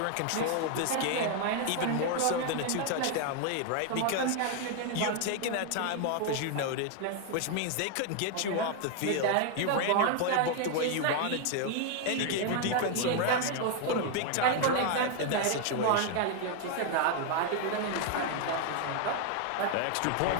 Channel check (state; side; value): different; both; correlation 0.00